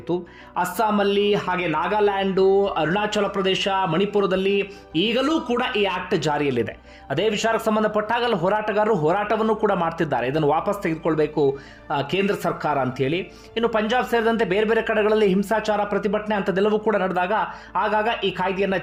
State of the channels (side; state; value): both; identical; correlation 1.00